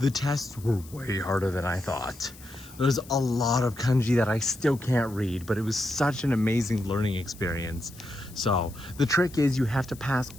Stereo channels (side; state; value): left; noise; hiss, 21 dB below the sound